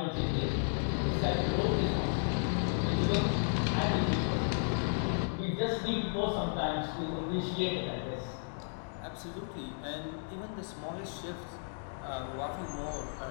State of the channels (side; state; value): right; silent; digital silence